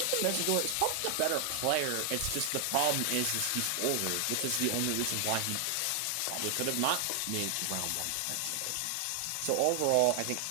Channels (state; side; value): different; both; correlation 0.00